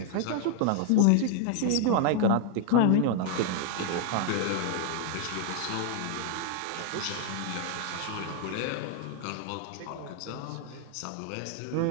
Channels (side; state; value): both; different; correlation 0.00